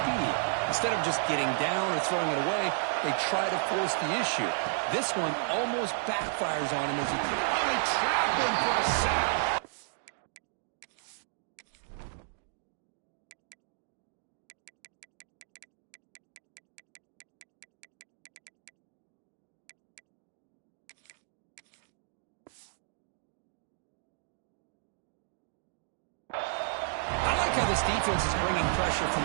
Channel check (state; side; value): silent; left; digital silence